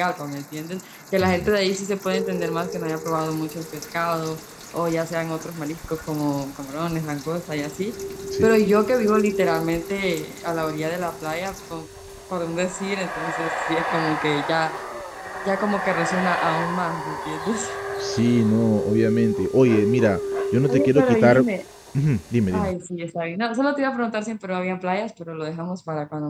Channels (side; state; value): both; identical; correlation 1.00